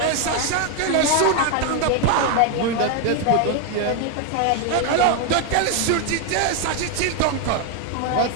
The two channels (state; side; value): different; both; correlation 0.01